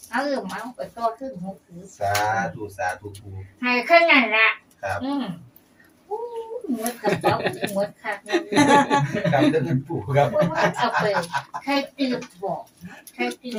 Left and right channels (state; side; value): identical; both; correlation 1.00